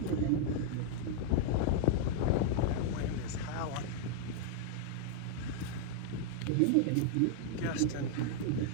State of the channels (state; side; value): different; both; correlation -0.01